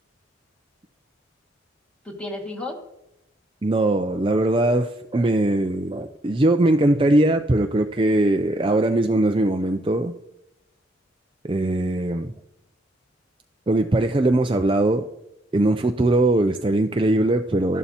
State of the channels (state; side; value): normal; both; correlation 0.71